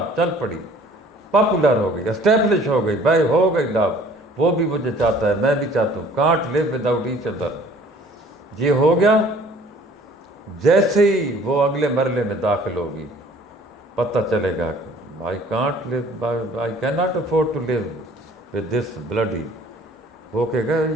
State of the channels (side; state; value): both; normal; correlation 0.53